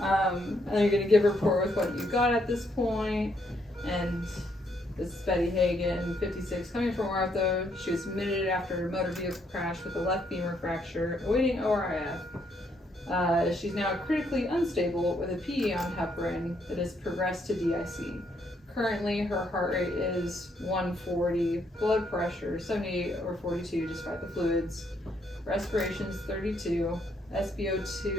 And then you're going to give a report with what you got at this point. And this is Betty Hagen, 56, coming from ortho. She was admitted after a motor vehicle crash with a left femur fracture, awaiting ORIF. She's now critically unstable with a PE on heparin that has progressed to DIC. Currently, her heart rate is 140, blood pressure 78/42 despite the fluids, respiration is 32,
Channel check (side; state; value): both; normal; correlation 0.73